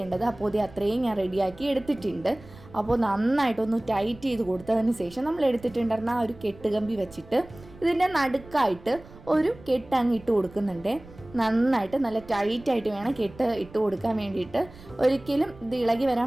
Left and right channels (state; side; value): noise; right; rumble, 20 dB below the sound